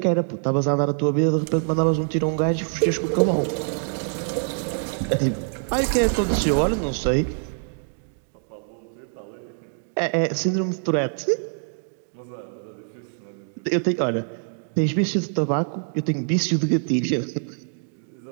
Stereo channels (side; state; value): left; silent; digital silence